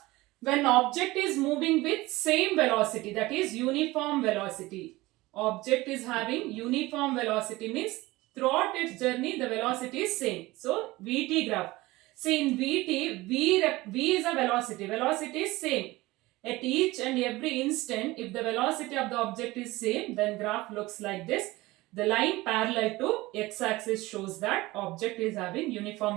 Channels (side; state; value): left; quieter; 19.8 dB